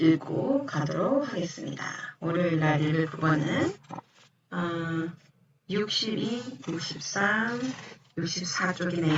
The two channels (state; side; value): identical; both; correlation 1.00